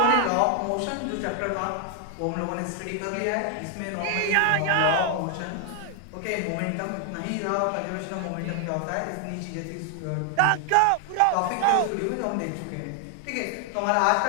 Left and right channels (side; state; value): both; different; correlation 0.00